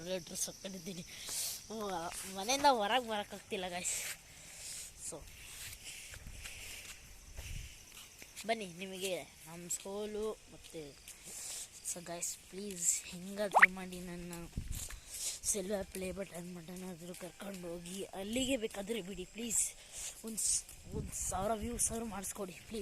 2 ಡ್ರೆಸ್ ಹಾಕ್ಕೊಂಡಿದ್ದೀನಿ. ಮನೆಯಿಂದ ಹೊರಗೆ ಬರೋಕ್ಕಾಗ್ತಿಲ್ಲ ಗೈಸ್. ಸೊ ಬನ್ನಿ ನಿಮಗೆ ನಮ್ಮ ಸ್ಕೂಲು ಮತ್ತು ಸೊ ಗೈಸ್ ಪ್ಲೀಸ್ ಹೆಂಗಾದರೂ ಮಾಡಿ ನನ್ನ ಸಿಲ್ವರ್ ಪ್ಲೇ ಬಟನ್ ಆದರೂ ಕರ್ಕೊಂಡು ಹೋಗಿ ಅಲ್ಲಿಗೆ ಬೇಕಾದರೆ ಬಿಡಿ ಪ್ಲೀಸ್. ಒಂದು 1000 ವ್ಯೂಸ್ ಆದರೂ ಮಾಡಿಸ್ಕೊಡಿ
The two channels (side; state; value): both; identical; correlation 1.00